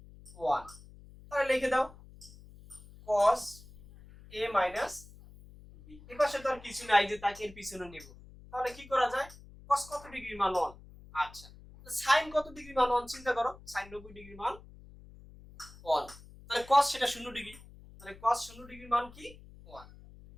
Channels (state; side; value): noise; left; hum, 20 dB below the sound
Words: 1, তাহলে লিখে দাও cos a - b। এবার সেটা আর কিছু নাই যে তাকে এর পিছনে নেব, তাহলে কি করা যায়, cos কত ডিগ্রির মান 1, আচ্ছা sin কত ডিগ্রির মান 1 চিন্তা করো, sin 90 ডিগ্রির মান 1, তাহলে cos সেটা 0 ডিগ্রি, তাহলে cos 0 ডিগ্রির মান কি 1,